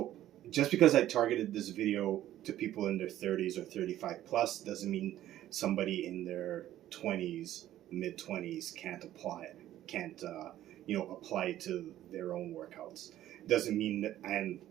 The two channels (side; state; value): left; quieter; 13.1 dB